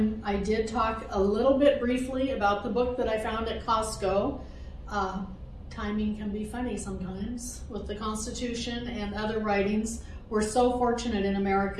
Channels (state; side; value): identical; both; correlation 1.00